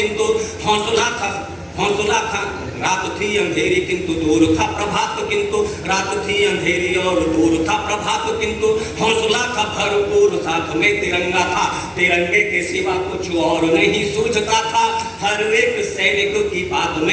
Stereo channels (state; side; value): identical; both; correlation 1.00